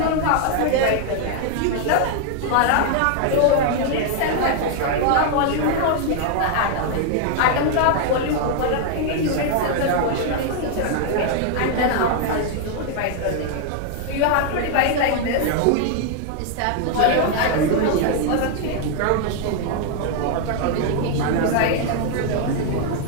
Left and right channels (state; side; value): different; both; correlation 0.00